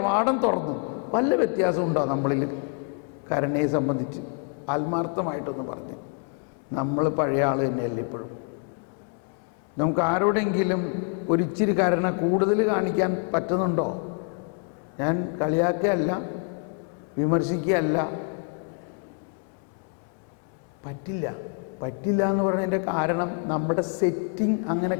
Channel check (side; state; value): right; quieter; 36.7 dB